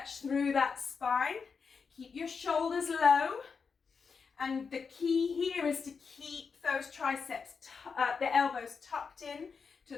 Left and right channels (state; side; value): quieter; right; 5.5 dB